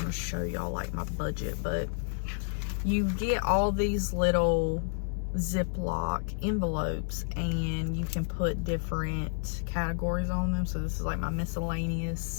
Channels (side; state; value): right; silent; digital silence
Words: to show y'all like my budget, but you get all these little Ziploc envelopes, and you can put different categories on them. So this is like my